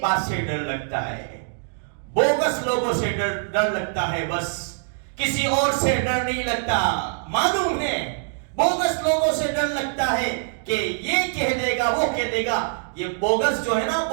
بات سے ڈر لگتا ہے، بوگس لوگوں سے ڈر لگتا ہے، بس کسی اور سے ڈر نہیں لگتا. معلوم ہے بوگس لوگوں سے ڈر لگتا ہے کہ یہ کہہ دے گا وہ کہہ دے گا. یہ بوگس جو ہے نا،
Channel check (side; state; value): left; silent; digital silence